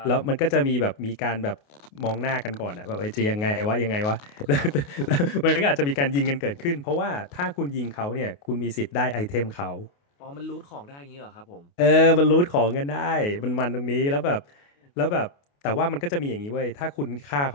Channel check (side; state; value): right; late; 28 ms